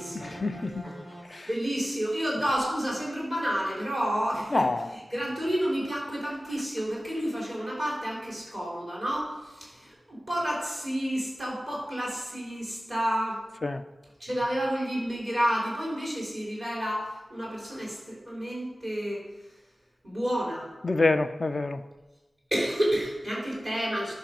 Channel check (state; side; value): normal; both; correlation 0.95